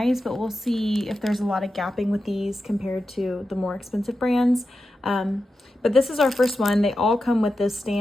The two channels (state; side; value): normal; both; correlation 0.90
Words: but we'll see if there's a lot of gapping with these compared to the more expensive brands. But this is our first one. They all come with this